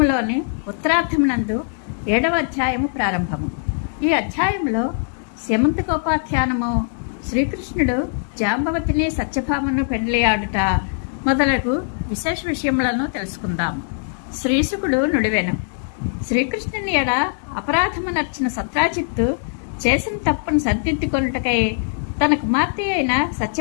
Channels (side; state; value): right; silent; digital silence